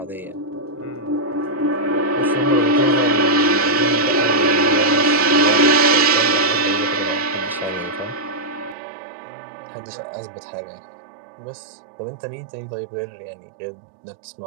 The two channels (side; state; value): left; drops out; at 8.8 s